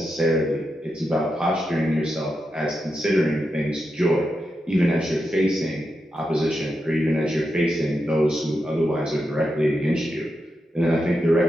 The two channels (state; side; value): normal; both; correlation 0.87